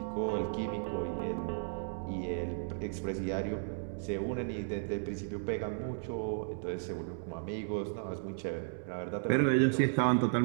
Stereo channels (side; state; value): left; silent; digital silence